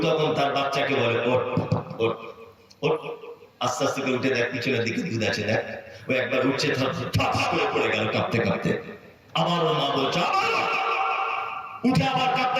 তখন তার বাচ্চাকে বলে, ওঠ ওঠ ওঠ। আস্তে আস্তে করে উঠে দেখ পিছনের দিকে দুধ আছে, দেখ। ও একবার উঠছে, ঠাস করে পড়ে গেল কাঁপতে কাঁপতে। আবার ও মা বলছে, উঠে আবার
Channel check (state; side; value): identical; both; correlation 1.00